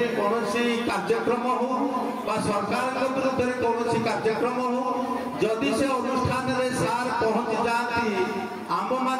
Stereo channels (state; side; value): identical; both; correlation 1.00